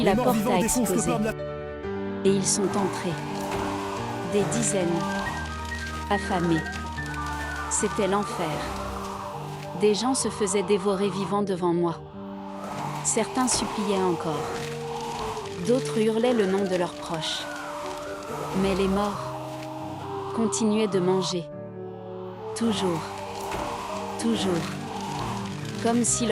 la porte a explosé. Et ils sont entrés. Des dizaines. Affamés. C'était l'enfer. Des gens se faisaient dévorer vivants devant moi. Certains suppliaient encore. D'autres hurlaient le nom de leurs proches. Mais les morts continuaient de manger. Toujours. Toujours. Comme si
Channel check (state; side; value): identical; both; correlation 1.00